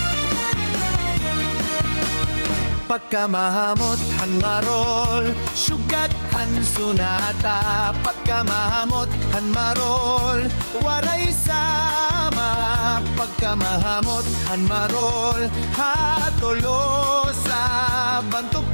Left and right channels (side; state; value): both; inverted; correlation -1.00